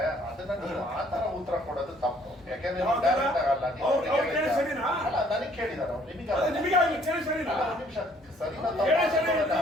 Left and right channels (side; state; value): both; normal; correlation 0.61